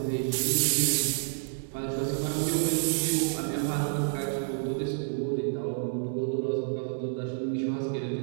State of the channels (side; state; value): left; silent; digital silence